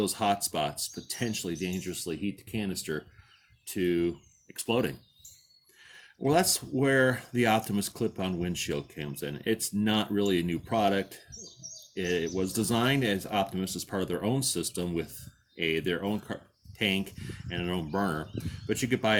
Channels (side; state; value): both; identical; correlation 1.00